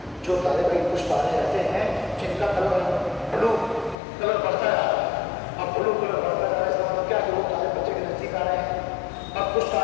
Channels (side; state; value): right; drops out; at 4.0 s